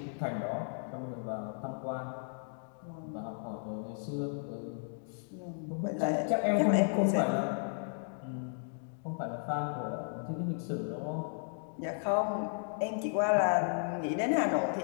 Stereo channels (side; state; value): right; silent; digital silence